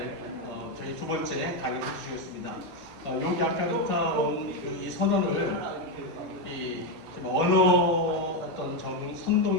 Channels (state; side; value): late; left; 16 ms